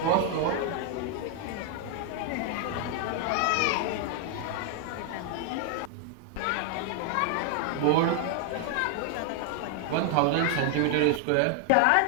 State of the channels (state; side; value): different; both; correlation 0.00